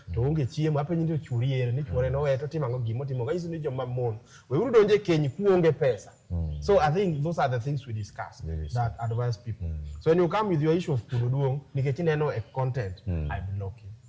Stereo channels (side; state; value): both; identical; correlation 1.00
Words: to onge chiemo ape nyindo churie ni chuore no weto timango gimo timo ga isu ni joma mon. We uru donje keny ku onge pesa. So I think those are the things we discuss that advise people. So when you come with your issue of pududuong, nikechineno a content, I block you.